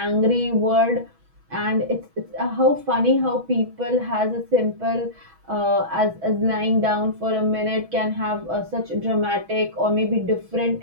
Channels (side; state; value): left; late; 6.2 ms